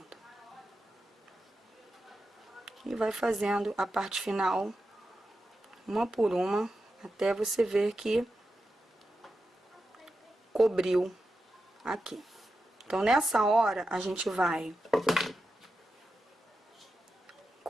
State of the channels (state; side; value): normal; both; correlation 0.89